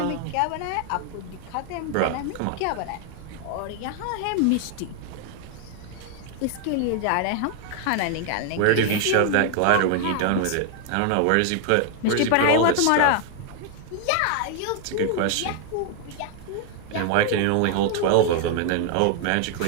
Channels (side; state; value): both; different; correlation 0.00